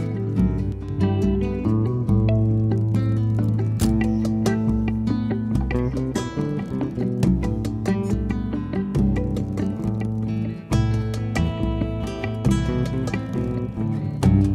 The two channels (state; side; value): identical; both; correlation 1.00